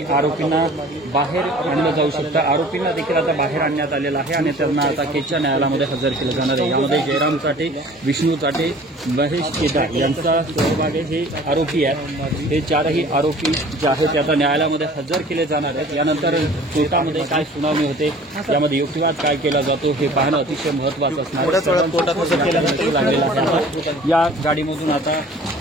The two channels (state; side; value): normal; both; correlation 0.48